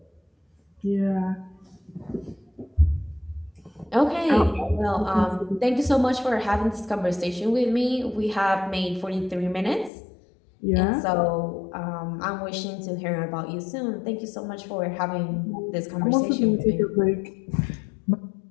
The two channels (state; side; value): drops out; right; at 9.9 s